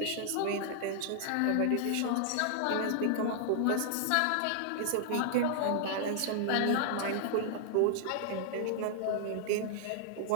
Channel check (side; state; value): both; different; correlation -0.01